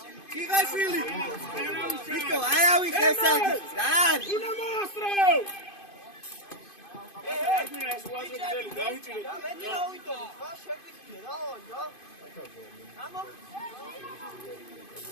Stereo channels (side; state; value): right; late; 2.5 ms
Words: Chigashvili. Chico, ayawi kesaki. Dan. Una mostro.